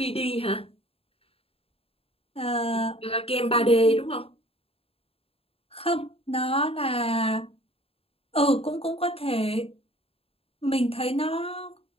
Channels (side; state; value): right; late; 0.28 ms